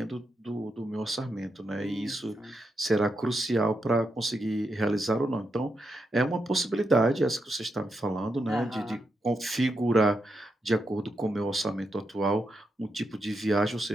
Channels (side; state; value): both; normal; correlation 0.84